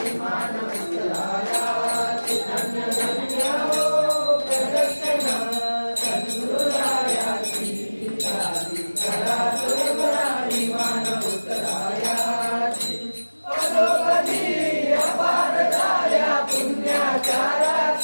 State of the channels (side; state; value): both; inverted; correlation -1.00